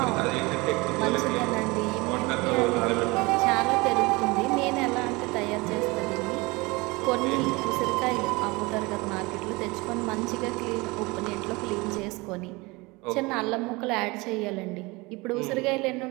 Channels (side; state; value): left; quieter; 24.3 dB